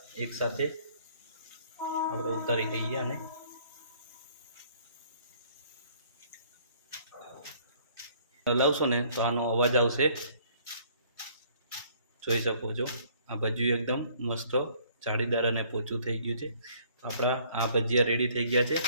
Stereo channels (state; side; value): inverted; both; correlation -0.59